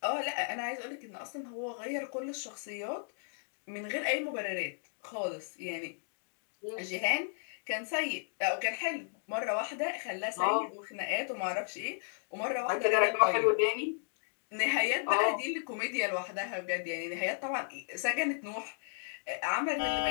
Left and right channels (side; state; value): right; silent; digital silence